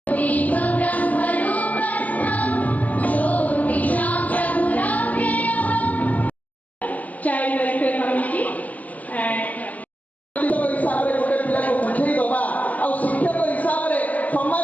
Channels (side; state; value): right; late; 0.076 ms